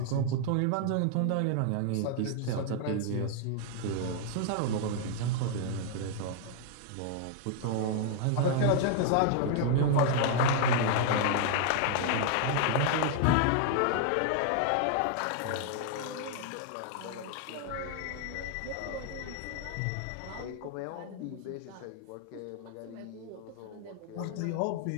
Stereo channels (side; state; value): both; different; correlation 0.00